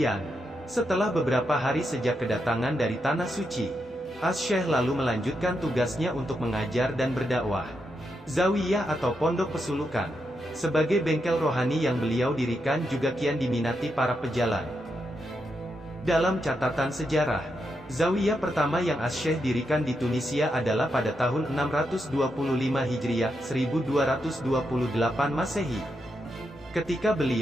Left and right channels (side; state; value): both; normal; correlation 0.83